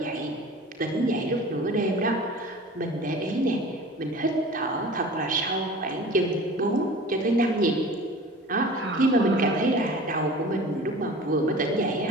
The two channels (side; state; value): both; normal; correlation 0.40